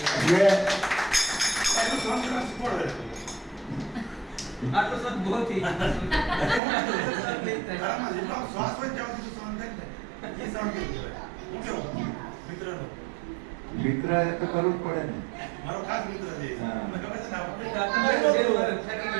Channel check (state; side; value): drops out; left; at 6.6 s